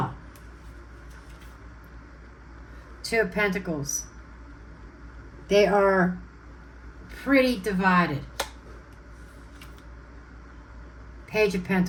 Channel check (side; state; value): both; identical; correlation 1.00